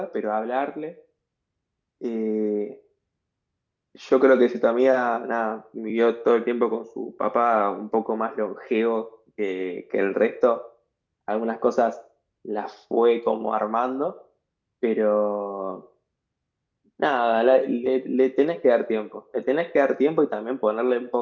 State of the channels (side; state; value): both; identical; correlation 1.00